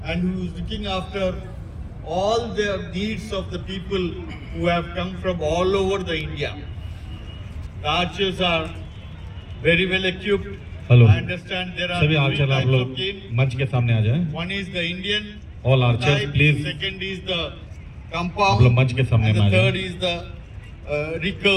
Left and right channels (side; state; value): both; identical; correlation 1.00